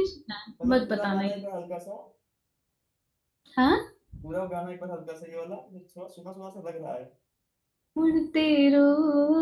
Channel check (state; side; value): identical; both; correlation 1.00